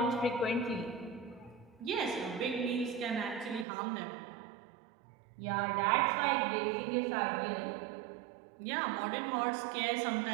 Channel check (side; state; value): left; drops out; at 3.7 s